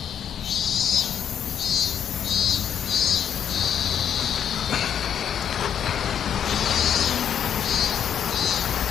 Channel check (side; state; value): right; quieter; 8.8 dB